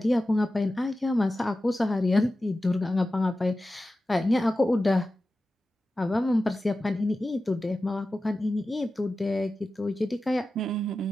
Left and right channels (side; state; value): both; normal; correlation 0.94